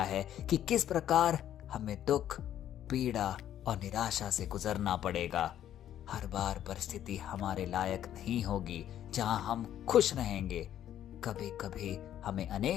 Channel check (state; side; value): quieter; right; 11.1 dB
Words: है कि किस प्रकार हमें दुख, पीड़ा और निराशा से गुजरना पड़ेगा। हर बार परिस्थिति हमारे लायक नहीं होगी जहां हम खुश रहेंगे। कभी कभी हमें